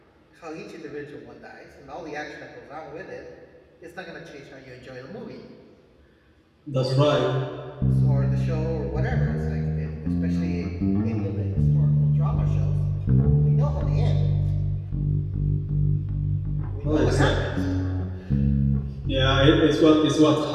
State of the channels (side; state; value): both; identical; correlation 1.00